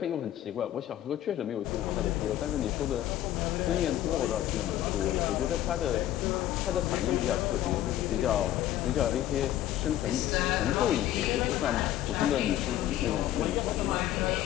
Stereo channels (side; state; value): right; quieter; 12.9 dB